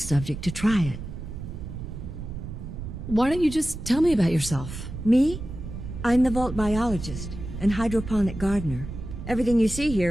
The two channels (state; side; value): noise; right; rumble, 9 dB below the sound